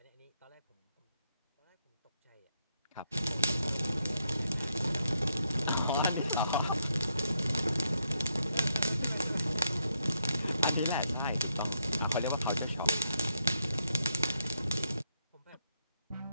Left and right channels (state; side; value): inverted; both; correlation -0.79